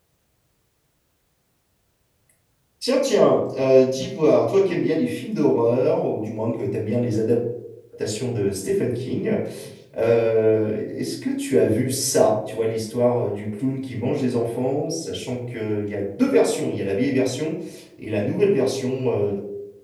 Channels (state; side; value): identical; both; correlation 1.00